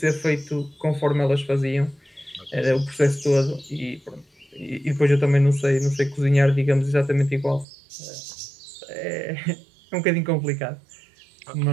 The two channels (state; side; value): drops out; left; at 7.7 s